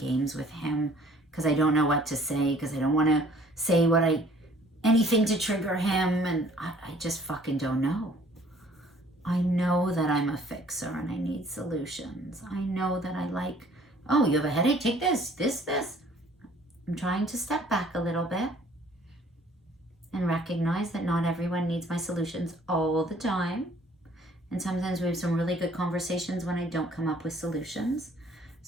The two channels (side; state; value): both; normal; correlation 0.56